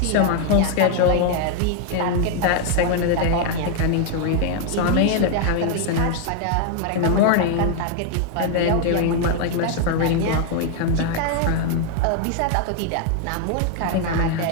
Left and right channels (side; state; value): both; different; correlation 0.00